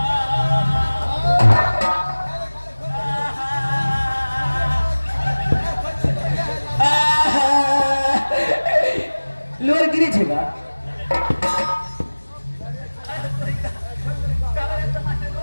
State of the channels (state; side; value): inverted; both; correlation -1.00